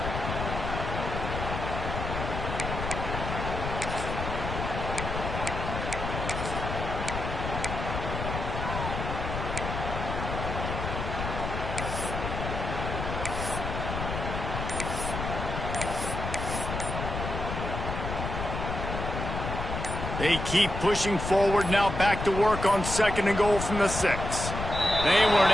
They keep pushing forward, now back to work on second and goal from the 6. They weren't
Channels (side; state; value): left; noise; rumble, 4 dB below the sound